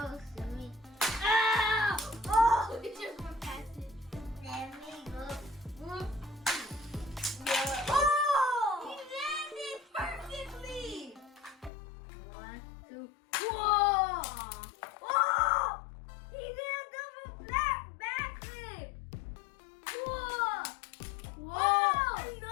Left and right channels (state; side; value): drops out; right; at 11.7 s